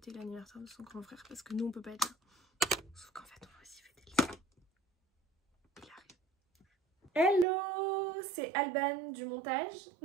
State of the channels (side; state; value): left; drops out; at 7.5 s